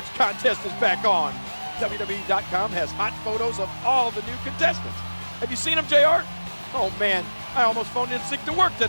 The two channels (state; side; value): inverted; both; correlation -1.00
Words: contest is back on. WWE.com has hot photos of all the new contestants. Have you seen them, JR? Oh man, I almost phoned in sick to work